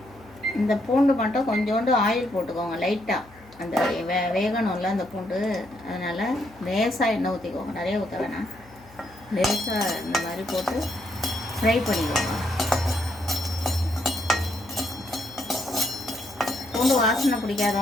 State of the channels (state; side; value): noise; left; hum, 24 dB below the sound